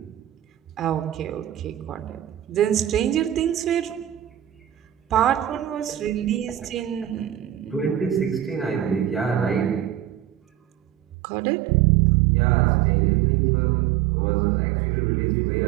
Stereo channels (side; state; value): left; drops out; at 11.2 s